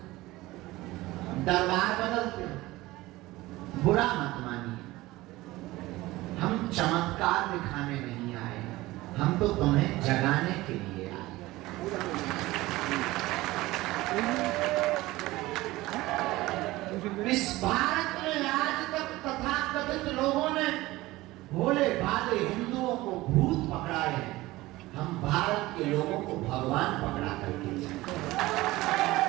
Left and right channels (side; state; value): left; quieter; 18.8 dB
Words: दरबार बदलते। बुरा मत मानिए, हम चमत्कार दिखाने नहीं आए, हम तो तुम्हें जगाने के लिए आए। इस भारत में आज तक तथाकथित लोगों ने भोले भाले हिंदुओं को भूत पकड़ाए हैं, हम भारत के लोगों को भगवान पकड़ा करके।